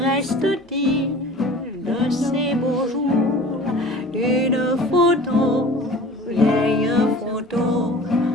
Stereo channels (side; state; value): both; normal; correlation 0.43